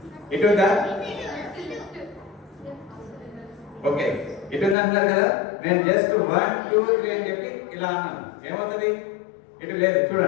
ఇటు ఉందా? ఓకే, ఇటు ఉంది అంటున్నారు కదా. నేను జస్ట్ 1 2 3 అని చెప్పి ఇలా అన్నాను, ఏమవుతుంది? ఇటు లేదు,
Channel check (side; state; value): right; drops out; at 4.8 s